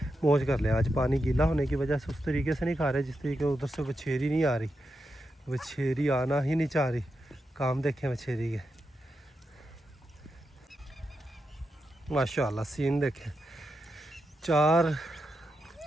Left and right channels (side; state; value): both; normal; correlation 0.87